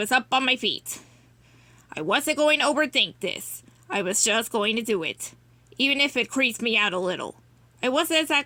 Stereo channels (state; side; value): identical; both; correlation 1.00